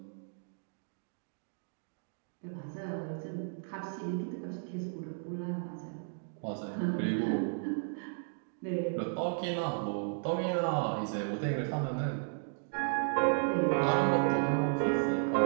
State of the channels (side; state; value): left; silent; digital silence